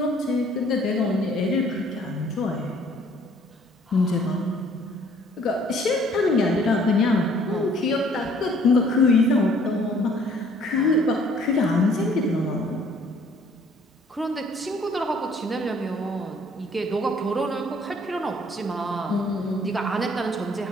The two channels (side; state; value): both; normal; correlation 0.58